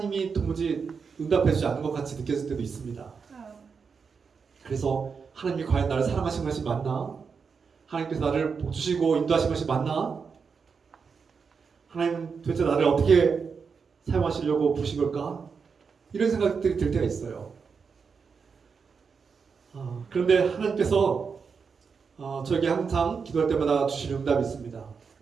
도무지 응답해주지 않는 것 같이 느껴질 때도 있습니다. 그래서 하나님이 과연 나를 사랑하신 것이 맞나? 하나님께서 나를 복주시고 인도하신 것이 맞나? 하나님 도대체 나를 어떻게 사용하시려고 부르신 걸까? 이런 생각들이 들 때가 있어요. 그런데 하나님께서 저에게 항상 기도할 때마다 주시는 응답이 있습니다.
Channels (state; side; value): quieter; left; 5.7 dB